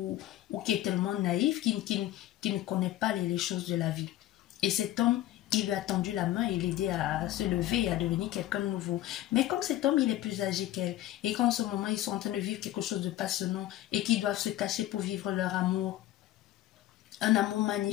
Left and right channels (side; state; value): right; quieter; 14.2 dB